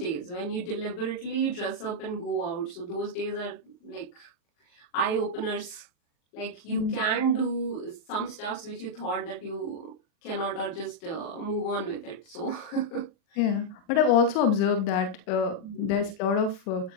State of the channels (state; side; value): late; right; 39 ms